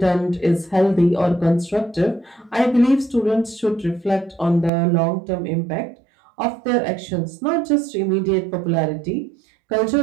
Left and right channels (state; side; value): drops out; left; at 4.7 s